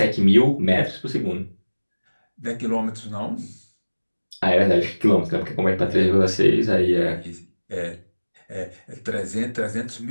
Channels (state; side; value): inverted; both; correlation -1.00